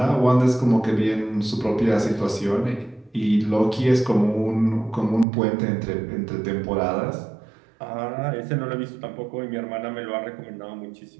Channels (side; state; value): left; drops out; at 5.2 s